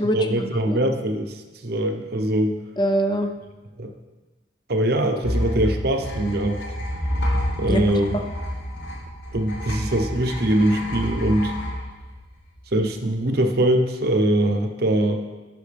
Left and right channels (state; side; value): normal; both; correlation 0.61